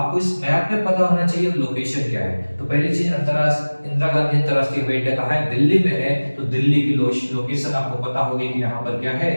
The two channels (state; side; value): inverted; both; correlation -1.00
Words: इस मैप में पता होना चाहिए लोकेशन क्या है। तो पहली चीज, इंदिरा गांधी अंतरराष्ट्रीय हवाई अड्डा कहाँ है, दिल्ली में है। तो दिल्ली की लोकेशन आपको पता होगी कि यहाँ पर क्या है,